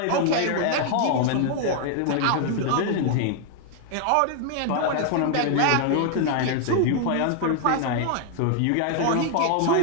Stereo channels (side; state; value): both; different; correlation 0.00